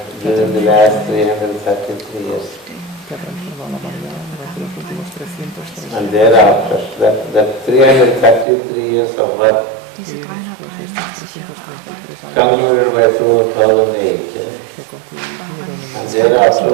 during the last 333 years. And thereafter, that 333 years of work concluded by 2008. And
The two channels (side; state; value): left; drops out; at 8.5 s